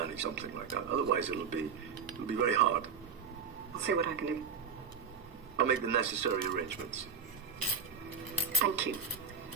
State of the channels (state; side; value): quieter; left; 5.8 dB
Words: something like that. Otherwise, it'll be very hard. I'll see what I can do. I'll make the necessary arrangements. Thank you.